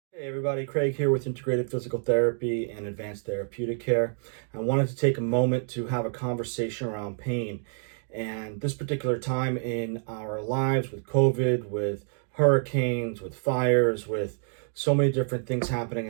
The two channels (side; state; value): left; silent; digital silence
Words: Hey everybody, Craig here with Integrated Physical Therapy and Advanced Therapeutic Care. I wanted to take a moment to have a conversation around pain. And this particular time in our lives with COVID, with hurricanes, with fires, with so many different things happening